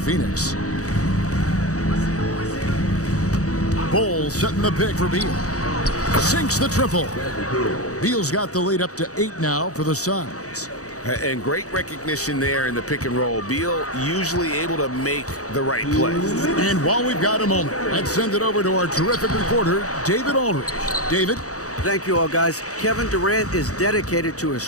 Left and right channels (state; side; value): late; right; 0.66 ms